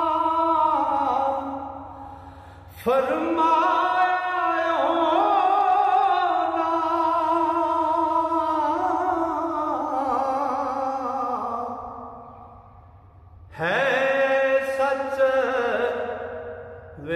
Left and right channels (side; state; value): both; identical; correlation 1.00